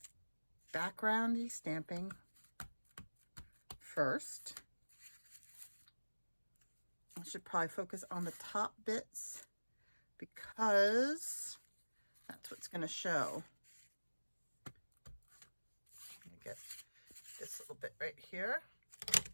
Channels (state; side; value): inverted; both; correlation -1.00